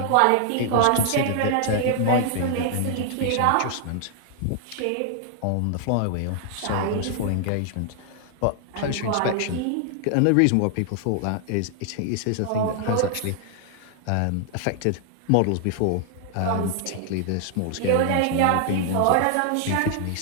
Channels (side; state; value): both; different; correlation 0.00